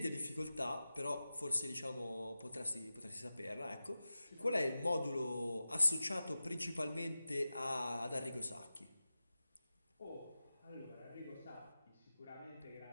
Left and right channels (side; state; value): both; inverted; correlation -0.94